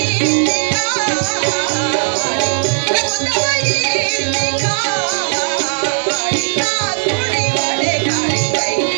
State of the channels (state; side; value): silent; left; digital silence